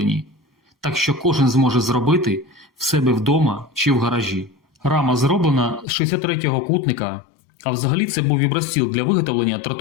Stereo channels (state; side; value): drops out; right; at 5.9 s